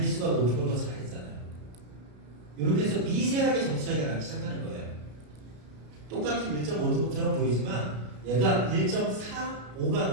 높은 걸 더 잘했잖아요. 이렇게 해서 미세하게 점수 차이가 나기 시작하는 거예요. 똑같은 1.5등급처럼 보이지만 얘가 1.45가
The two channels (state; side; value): late; left; 33 ms